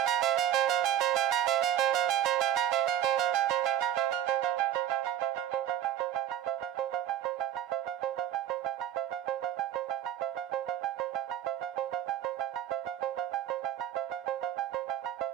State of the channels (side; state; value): left; quieter; 11.1 dB